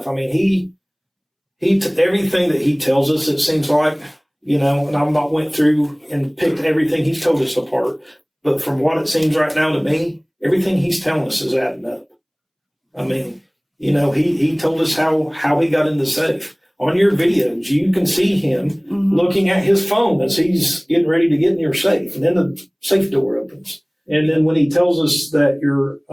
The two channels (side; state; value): both; identical; correlation 1.00